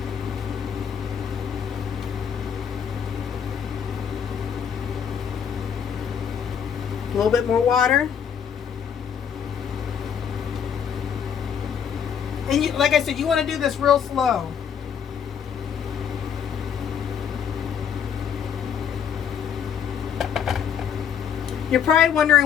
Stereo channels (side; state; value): right; quieter; 7.9 dB